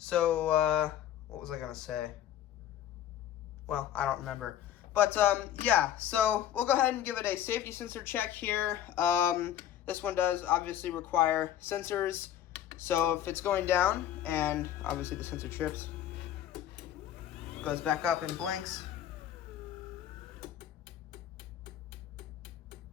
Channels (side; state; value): right; quieter; 11.1 dB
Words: what was I going to say? Well, I don't remember. But, yeah, so we'll go ahead and give it a safety sensor check here. This one does obviously require sensors. So if it's going down, and obviously the sensor trips, goes back up and blinks.